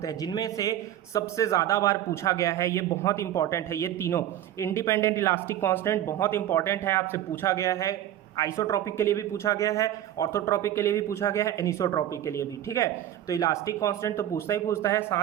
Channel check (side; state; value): left; quieter; 12.0 dB